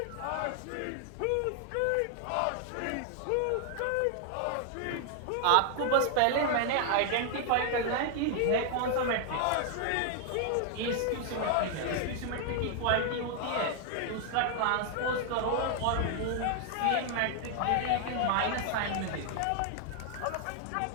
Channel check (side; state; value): both; different; correlation 0.00